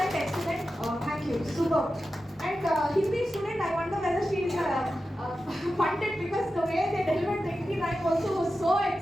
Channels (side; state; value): both; normal; correlation 0.92